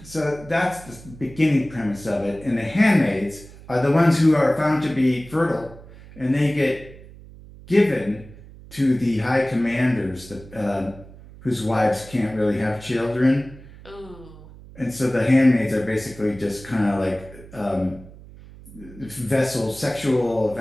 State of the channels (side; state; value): right; noise; hum, 19 dB below the sound